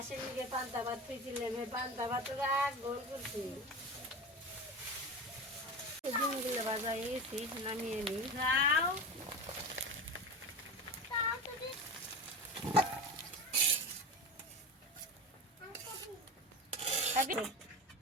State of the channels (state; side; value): normal; both; correlation 0.26